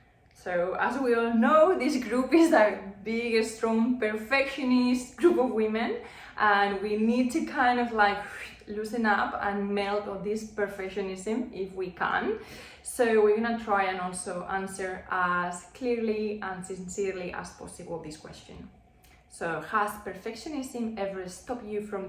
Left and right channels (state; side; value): identical; both; correlation 1.00